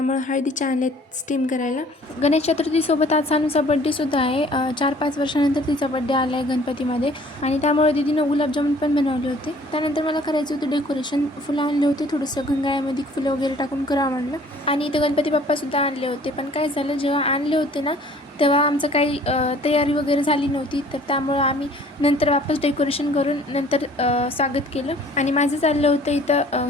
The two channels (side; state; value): both; normal; correlation 0.54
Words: हळदीच्या आणलेत स्टीम करायला. गणेश चतुर्थी सोबत आज सानूचा बड्डे सुद्धा आहे. 4-5 वर्षानंतर तिचा बड्डे आलाय गणपतीमध्ये आणि त्यामुळे दीदीनं गुलाबजामुन पण बनवले होते. त्यानंतर मला करायचं होतं डेकोरेशन. फुलं आणले होते, थोडंसं गंगाळ्यामध्ये फुलं वगैरे टाकून करावं म्हणलं. आणि इथं गणपती बाप्पा सुद्धा आणले होते. पण काय झालं, जेव्हा आणले होते ना तेव्हा आमचं काही तयारी वगैरे झाली नव्हती, तर त्यामुळं आम्ही नंतर वापस डेकोरेशन करून नंतर स्वागत केलं. आणि माझं चाललं होतं इथं